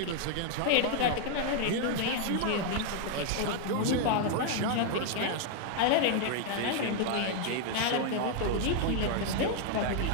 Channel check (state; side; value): different; both; correlation 0.00